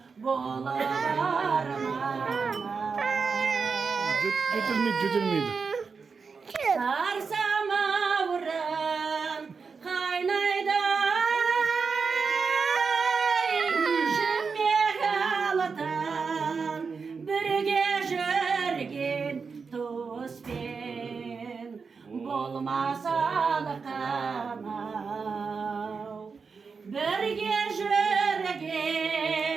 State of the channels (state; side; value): quieter; left; 5.2 dB